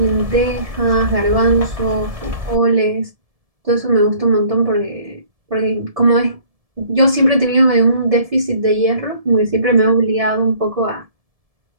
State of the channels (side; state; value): left; late; 1.7 ms